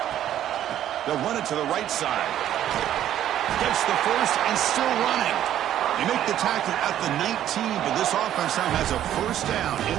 They'll run it to the right side. Gets the first and still running. They make the tackle at the 19, but this offense now has a first down in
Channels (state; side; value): quieter; left; 11.5 dB